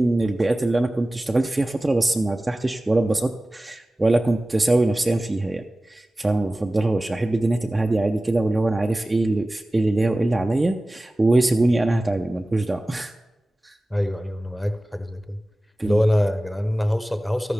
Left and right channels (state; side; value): normal; both; correlation 0.97